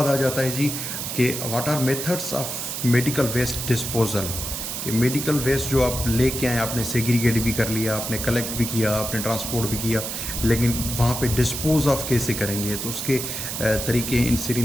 आ जाता है जी कि what are methods of medical waste disposal. कि मेडिकल वेस्ट जो आप लेके आए, आपने सेग्रीगेट भी कर लिया, आपने कलेक्ट भी किया, आपने ट्रांसपोर्ट भी किया, लेकिन वहाँ पे डिस्पोज ऑफ कैसे करेंगे? तो उसके तरीके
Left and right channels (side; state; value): right; noise; hiss, 5 dB below the sound